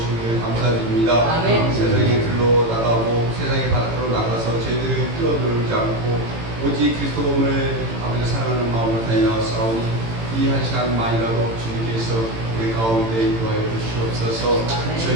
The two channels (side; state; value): left; late; 18 ms